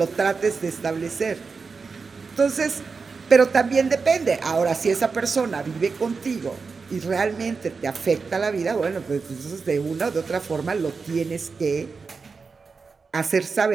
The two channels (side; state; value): left; quieter; 4.8 dB